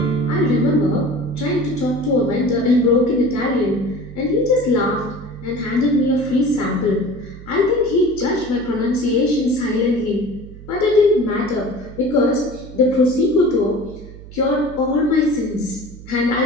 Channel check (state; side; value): noise; right; hum, 16 dB below the sound